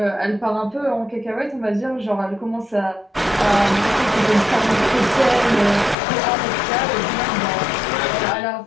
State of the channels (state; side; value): drops out; right; at 6.0 s